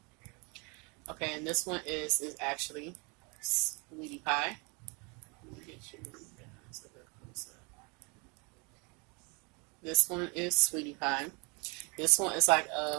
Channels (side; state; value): left; quieter; 31.3 dB